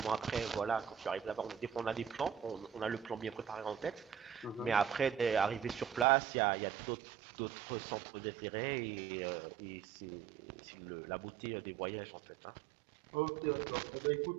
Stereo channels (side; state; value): left; drops out; at 6.1 s